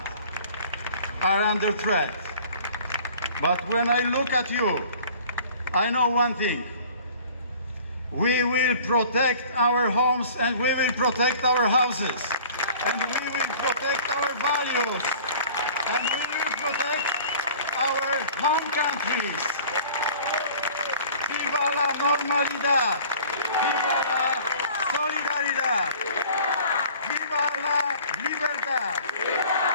are under threat. But when I look at you, I know one thing. We will protect our homes and we will protect our houses. And we will protect our values. And we will protect our home countries. Viva la normalidad. Viva la solidaridad. Viva la libertad.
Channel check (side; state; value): both; inverted; correlation -0.47